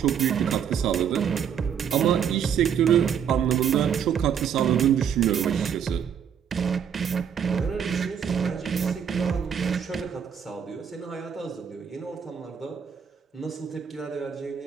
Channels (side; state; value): left; quieter; 8.0 dB